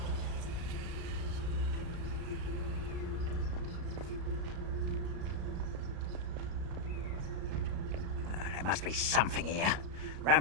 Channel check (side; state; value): left; late; 34 ms